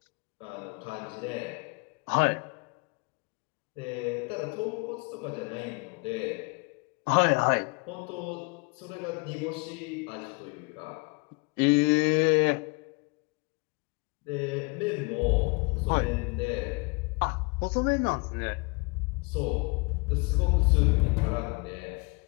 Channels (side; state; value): right; quieter; 29.6 dB